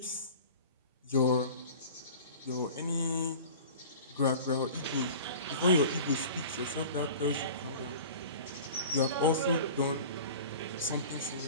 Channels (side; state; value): both; inverted; correlation -0.40